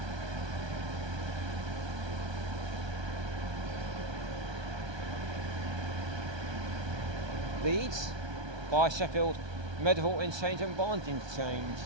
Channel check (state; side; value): late; left; 1.2 ms